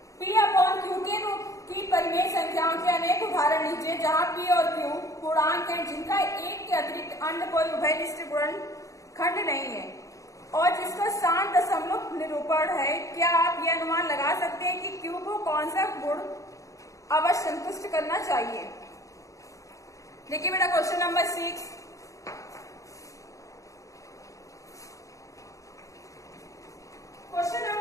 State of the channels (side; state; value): right; late; 0.16 ms